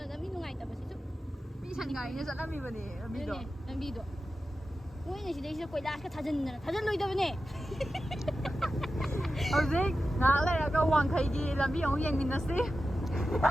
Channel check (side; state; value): both; normal; correlation 0.92